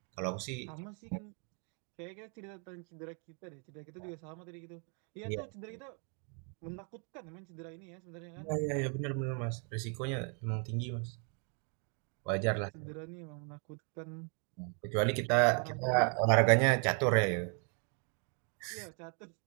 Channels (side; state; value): left; quieter; 38.8 dB